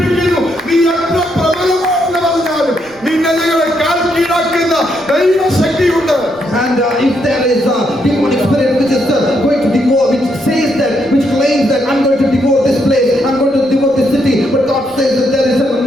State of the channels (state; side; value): noise; right; rumble, 28 dB below the sound